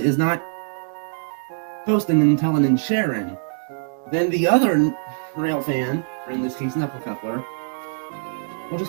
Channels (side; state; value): left; silent; digital silence